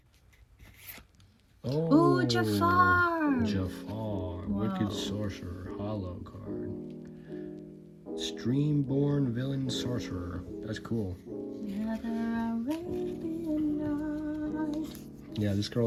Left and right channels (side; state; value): both; identical; correlation 1.00